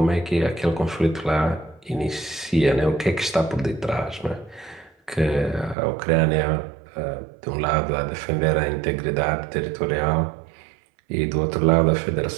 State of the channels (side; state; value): left; drops out; at 5.8 s